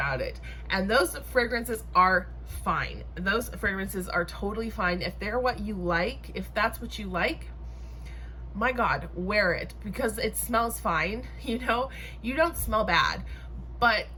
it. And those fragrances are fine. Those fragrances are totally fine. If they're what you like, if that's what you like, my God, wear it because it smells fine. You know, you don't smell bad, but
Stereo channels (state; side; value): identical; both; correlation 1.00